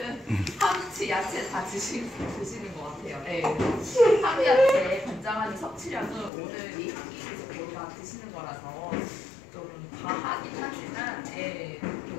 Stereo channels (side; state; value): right; drops out; at 6.3 s